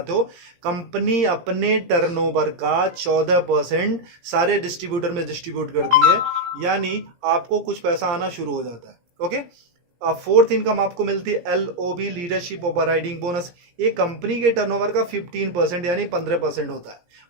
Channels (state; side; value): late; left; 17 ms